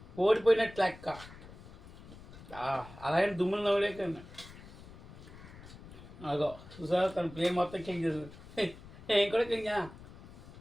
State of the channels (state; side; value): noise; left; rumble, 17 dB below the sound